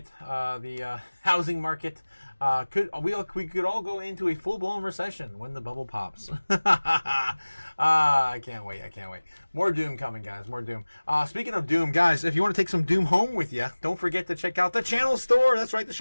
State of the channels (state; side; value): inverted; both; correlation -1.00